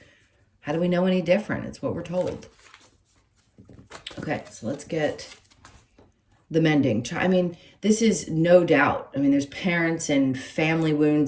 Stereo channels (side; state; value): both; identical; correlation 1.00